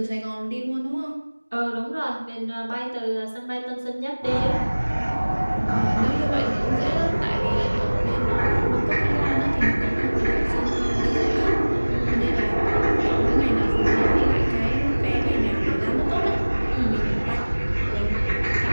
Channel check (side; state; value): both; inverted; correlation -1.00